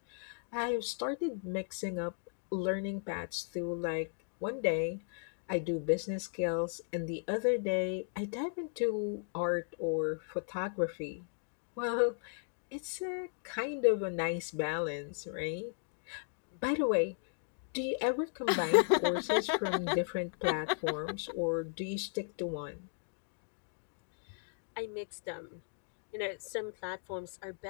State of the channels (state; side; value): silent; right; digital silence